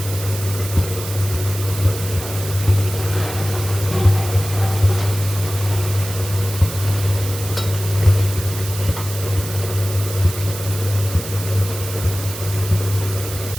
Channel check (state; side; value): noise; right; hiss, 10 dB below the sound